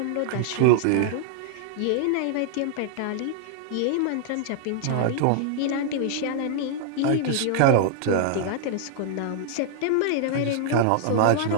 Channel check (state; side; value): different; both; correlation -0.01